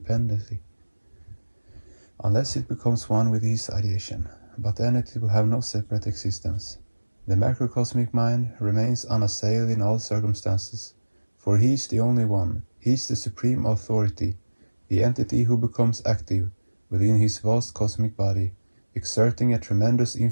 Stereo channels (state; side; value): inverted; both; correlation -1.00